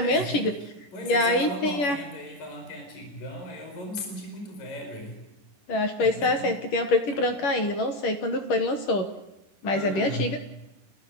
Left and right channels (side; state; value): right; late; 11 ms